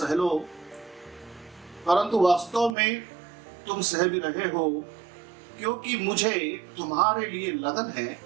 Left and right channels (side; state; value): left; drops out; at 2.8 s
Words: लो, परंतु वास्तव में तुम सह भी रहे हो, क्योंकि मुझे तुम्हारे लिए लगन है,